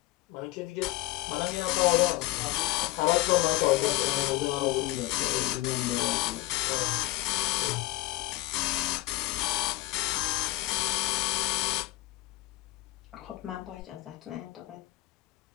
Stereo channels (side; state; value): right; quieter; 17.8 dB